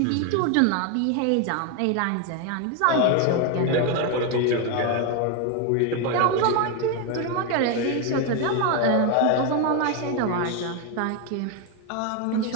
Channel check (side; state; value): both; different; correlation 0.01